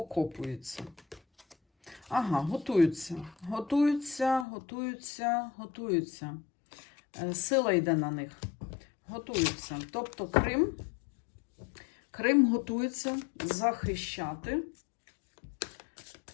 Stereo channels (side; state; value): right; drops out; at 4.5 s